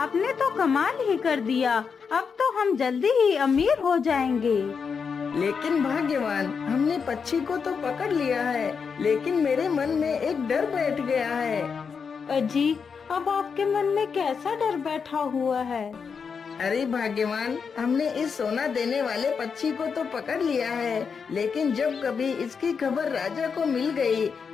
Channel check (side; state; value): right; quieter; 5.9 dB